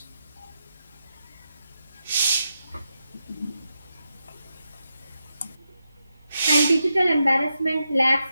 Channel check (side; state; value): both; inverted; correlation -0.86